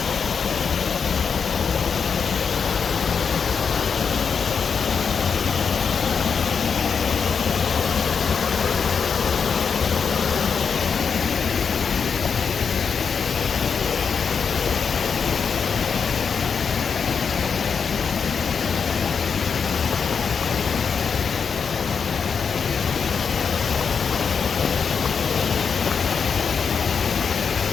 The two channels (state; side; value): quieter; right; 6.1 dB